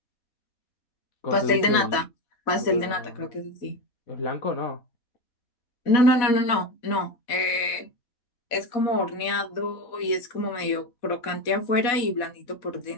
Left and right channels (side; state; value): right; late; 4.1 ms